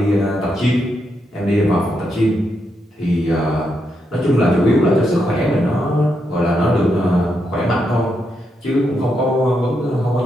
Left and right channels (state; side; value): normal; both; correlation 0.82